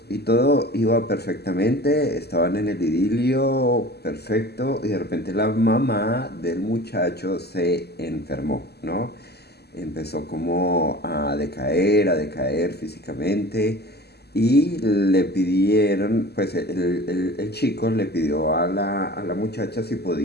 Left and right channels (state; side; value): late; right; 0.47 ms